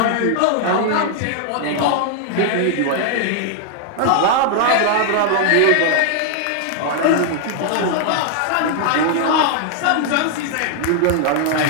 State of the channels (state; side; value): different; both; correlation 0.00